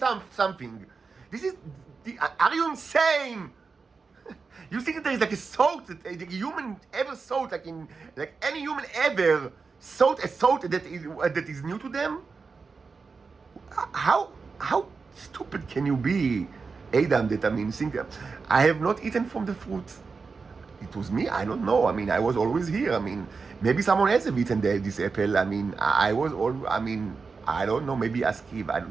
something? Are you insane? You think that there is like a thought that a human ever thought, like any human ever thought a thought that is new to them? How stupid can you be, Adam? Think that I have not eaten from the fruit. It was me. I don't know. I was always here. Maybe someone else have eaten this apple. I was all. I don't know. Maybe ask Eve. I don't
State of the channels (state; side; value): quieter; left; 4.7 dB